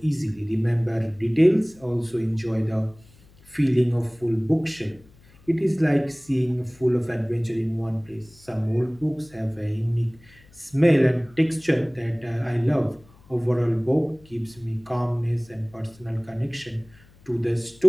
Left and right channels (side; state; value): left; noise; hum, 26 dB below the sound